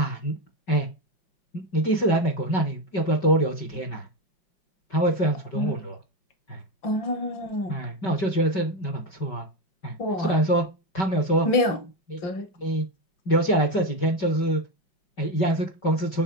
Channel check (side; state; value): right; late; 5.3 ms